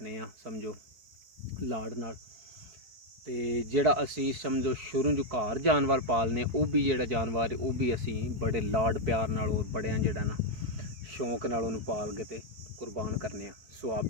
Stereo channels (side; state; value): left; late; 4.6 ms